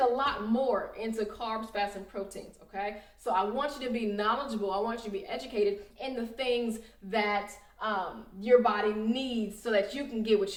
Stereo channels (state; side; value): identical; both; correlation 1.00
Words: lot more into carbs, fats, and proteins, okay? So I want you to be knowledgeable. I want you to be educated in the things that your body needs so that you can get what